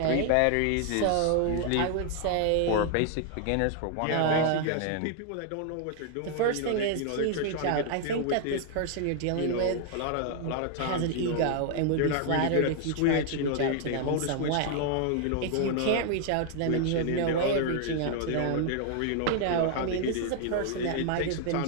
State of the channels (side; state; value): both; different; correlation 0.00